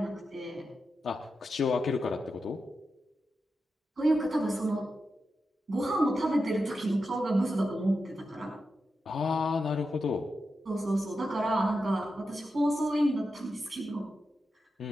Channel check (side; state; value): both; normal; correlation 0.89